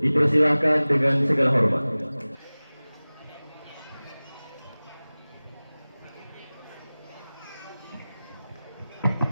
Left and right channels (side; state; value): both; inverted; correlation -0.99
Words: dipersilahkan dengan segala hormat.